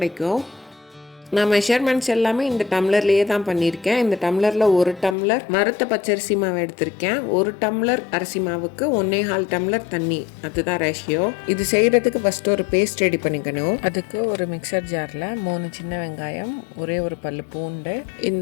நான் மெஷர்மெண்ட்ஸ் எல்லாமே இந்த டம்ளர்லேயே தான் பண்ணியிருக்கேன். இந்த டம்ளரில் 1 டம்ளர் வறுத்த பச்சரிசி மாவு எடுத்திருக்கேன். 1 டம்ளர் அரிசி மாவுக்கு 1.25 டம்ளர் தண்ணி, அதுதான் ரேஷியோ. இது செய்கிறதுக்கு ஃபஸ்ட்டு ஒரு பேஸ்ட் ரெடி பண்ணிக்கணும். அதுக்கு ஒரு மிக்சர் ஜாரில் 3 சின்ன வெங்காயம், ஒரே ஒரு பல்லு பூண்டு,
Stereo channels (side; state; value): right; drops out; at 5.2 s